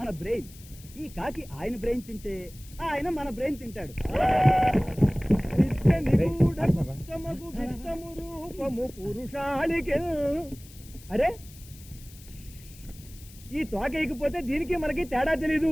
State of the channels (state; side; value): noise; left; hiss, 21 dB below the sound